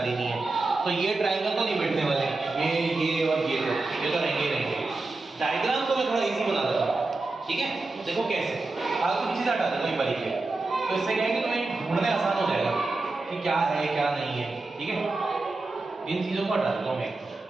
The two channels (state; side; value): quieter; left; 3.3 dB